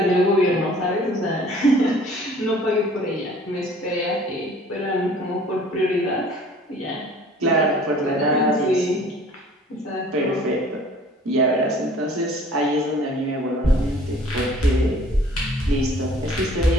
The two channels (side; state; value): both; normal; correlation 0.51